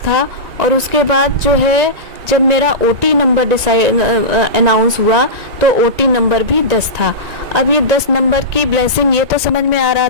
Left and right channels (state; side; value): late; left; 1.9 ms